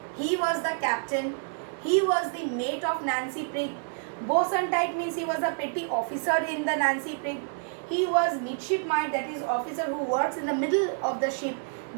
he was the captain, he was the mate of Nancy Prig. Boatswain tight means he was a petty officer in the Nancy Prig. He was midshipmite, that is officer who works in the middle of the ship,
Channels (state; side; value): silent; left; 59 dB below the other